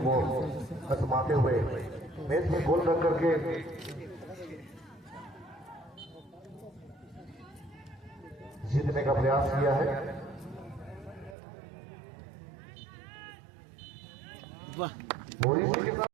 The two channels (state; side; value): drops out; left; at 11.4 s